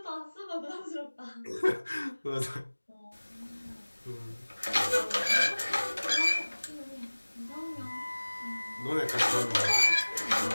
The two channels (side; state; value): both; inverted; correlation -1.00